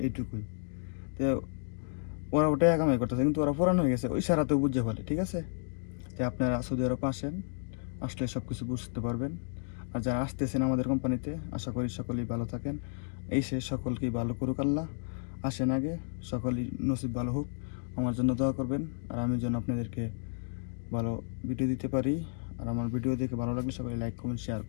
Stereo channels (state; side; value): silent; right; digital silence